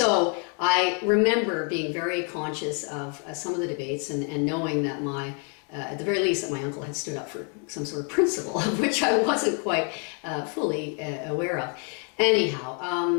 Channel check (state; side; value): quieter; right; 39.3 dB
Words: I remember being very conscious of some of the debates and knowing that at the very least, that my uncle had stood up for some sort of principle, of which I wasn't quite fully aware of.